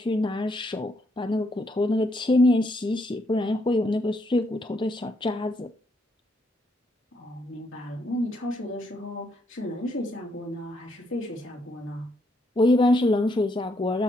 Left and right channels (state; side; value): normal; both; correlation 0.75